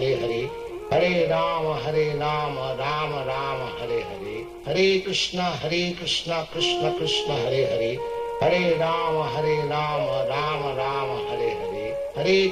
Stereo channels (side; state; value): both; identical; correlation 1.00